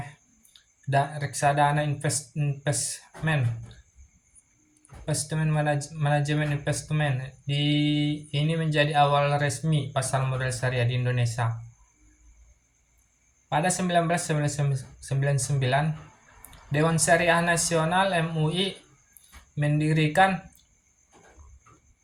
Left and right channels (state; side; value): identical; both; correlation 1.00